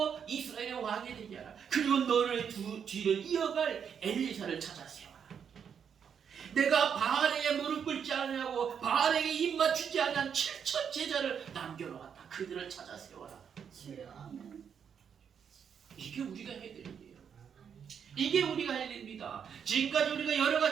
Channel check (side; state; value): left; quieter; 7.5 dB